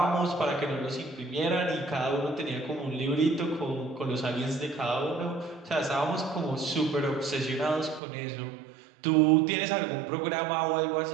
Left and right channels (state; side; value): drops out; left; at 8.0 s